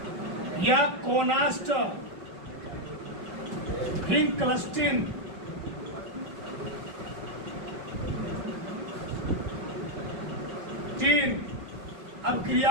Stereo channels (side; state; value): left; late; 5.3 ms